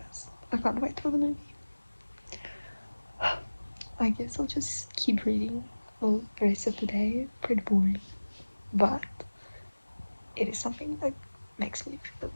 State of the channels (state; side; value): inverted; both; correlation -1.00